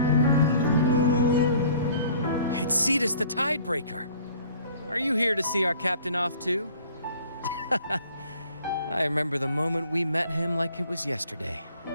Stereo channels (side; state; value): both; inverted; correlation -0.54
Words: It's Cetus the Tidebreaker. Are you here to see our captain off too? I remember the moment we met him like it was yesterday.